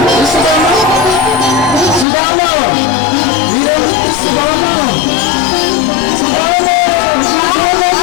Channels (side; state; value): right; drops out; at 2.1 s